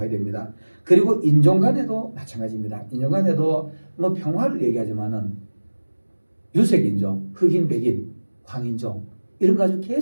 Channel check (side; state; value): both; inverted; correlation -1.00